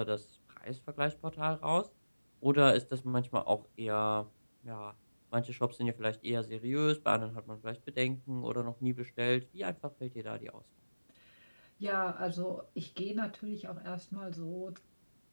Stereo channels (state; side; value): inverted; both; correlation -1.00